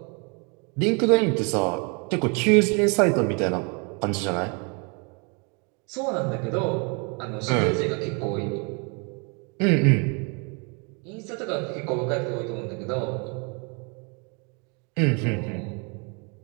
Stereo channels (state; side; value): quieter; left; 34.0 dB